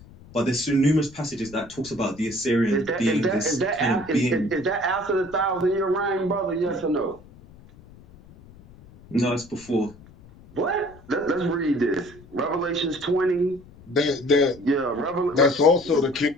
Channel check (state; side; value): noise; left; rumble, 22 dB below the sound